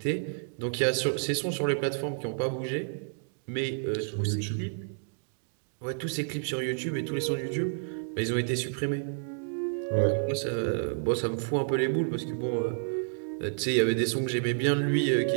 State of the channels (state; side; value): silent; left; digital silence